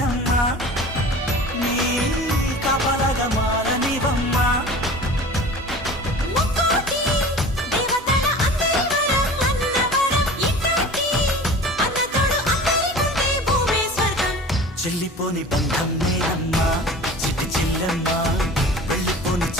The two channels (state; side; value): normal; both; correlation 0.39